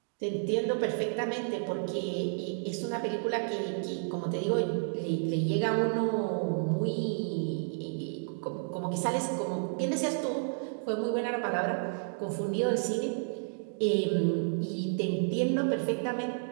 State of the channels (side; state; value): left; silent; digital silence